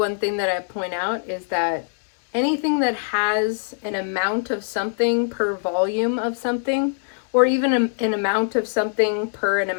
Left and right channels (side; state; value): right; silent; 64 dB below the other